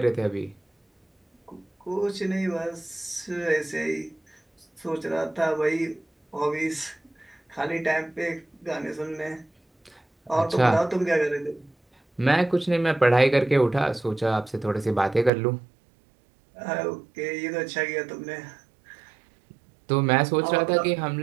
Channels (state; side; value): drops out; left; at 15.3 s